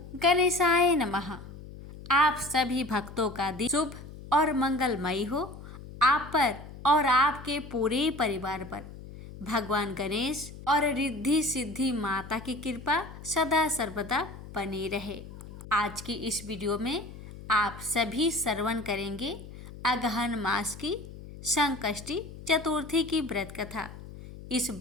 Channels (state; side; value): noise; left; hum, 14 dB below the sound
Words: गणेशाय नमः। आप सभी भक्तों का दिन शुभ और मंगलमयी हो। आप पर और आपके पूरे परिवार पर भगवान गणेश और रिद्धि सिद्धि माता की कृपा सदा सर्वदा बनी रहे। आज की इस वीडियो में आप सभी श्रवण करेंगे अगहन मास की संकष्टी चतुर्थी की व्रत कथा। इस